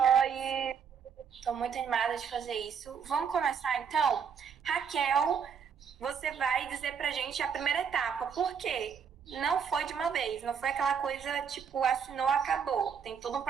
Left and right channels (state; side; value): quieter; left; 6.9 dB